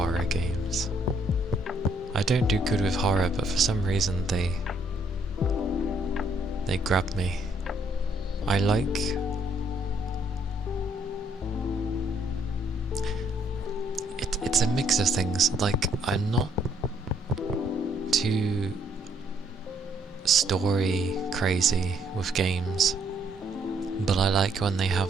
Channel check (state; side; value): normal; both; correlation 0.68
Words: games. I don't do good with horror, but for some reason they grab me. I like... It's a mix of things. Like, I'm not too story crazy with games, but I like when they have